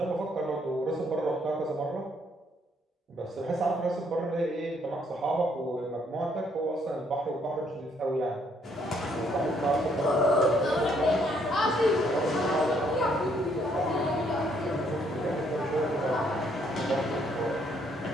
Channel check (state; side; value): normal; both; correlation 0.69